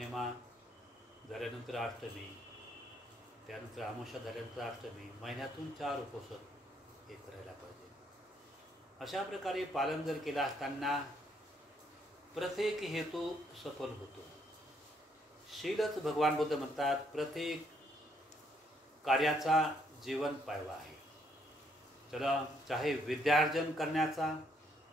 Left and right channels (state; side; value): normal; both; correlation 0.71